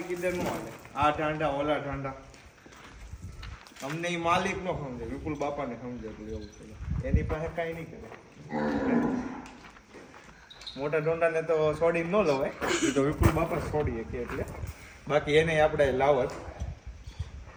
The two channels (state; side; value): identical; both; correlation 1.00